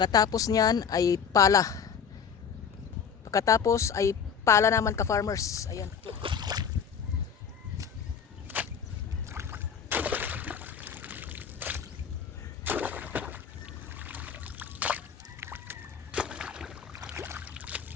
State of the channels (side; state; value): right; quieter; 7.0 dB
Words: niyan ay pala. Pagkatapos ay pala naman ka-farmers. Ayan.